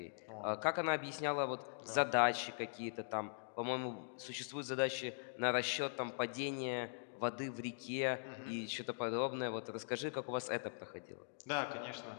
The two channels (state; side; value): silent; right; digital silence